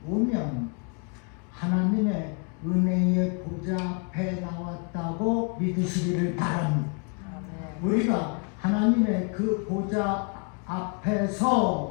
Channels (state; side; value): quieter; right; 37.3 dB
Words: 오면 하나님의 은혜의 보좌 앞에 나왔다고 믿으시기를 바랍니다. 우리가 하나님의 그 보좌